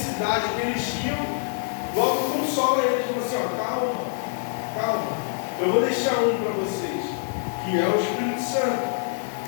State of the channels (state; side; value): silent; right; digital silence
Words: que eles tinham, logo consola eles, falou assim, calma, calma. Eu vou deixar um para vocês, que é o Espírito Santo.